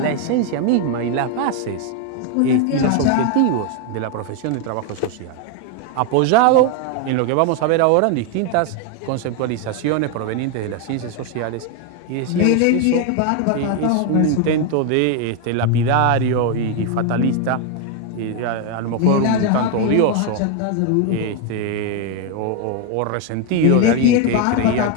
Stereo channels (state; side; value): different; both; correlation 0.01